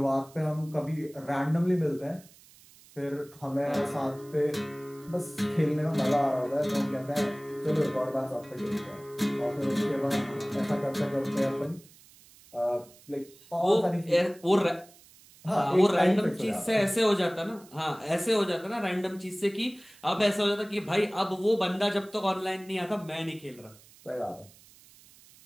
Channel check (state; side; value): noise; right; hiss, 25 dB below the sound